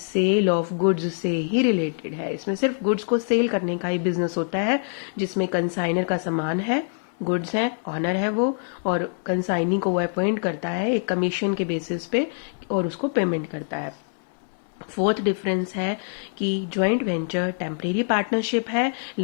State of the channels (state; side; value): silent; right; 62 dB below the other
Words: ऑफ गुड्स से ही रिलेटेड है। इसमें सिर्फ गुड्स को सेल करने का ही बिजनेस होता है, जिसमें कंसाइनर का सामान है, गुड्स है, ऑनर है वो, और कंसाइनी को वो अपॉइंट करता है एक कमीशन के बेसिस पे और उसको पेमेंट करता है। फोर्थ डिफरेंस है कि जॉइंट वेंचर टेम्परेरी पार्टनरशिप है,